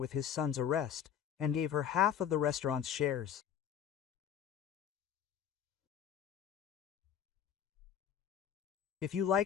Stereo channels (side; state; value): right; quieter; 9.1 dB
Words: his son's arrest, and gave her half of the restaurant's shares. If you